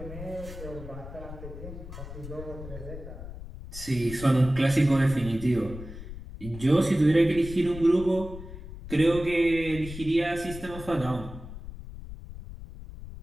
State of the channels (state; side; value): noise; left; rumble, 12 dB below the sound